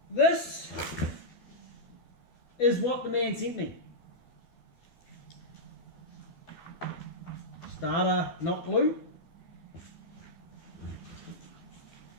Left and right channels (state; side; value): late; right; 12 ms